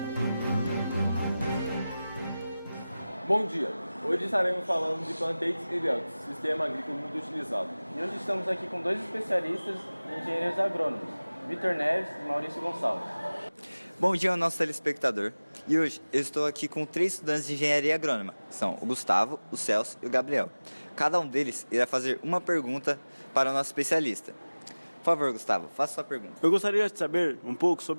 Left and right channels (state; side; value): inverted; both; correlation -0.98